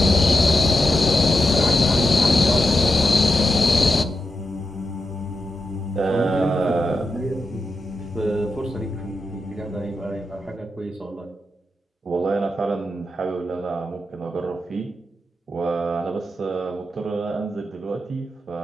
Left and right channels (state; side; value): normal; both; correlation 0.88